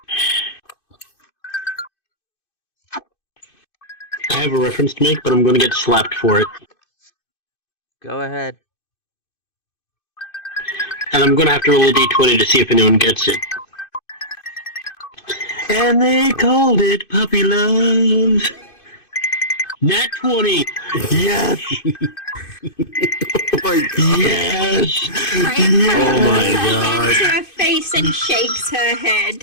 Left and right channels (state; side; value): late; right; 2.5 ms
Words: I have a reference to make, but I'm going to get slapped for it. Go ahead. And I'm going to have to roll a d20 to see if anyone gets it. And they called it Puppy Love. Nat 20. Yes. Oh my god. Yes. Oh my god. To her face and shakes her